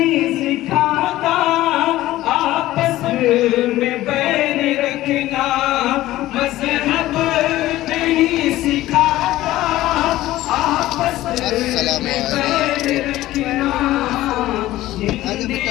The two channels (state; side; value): quieter; right; 15.7 dB